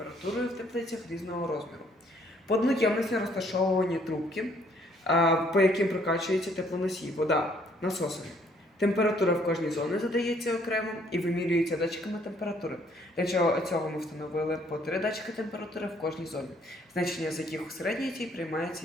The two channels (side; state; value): both; normal; correlation 0.64